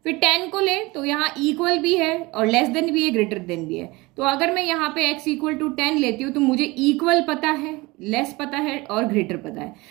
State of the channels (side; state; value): left; quieter; 22.8 dB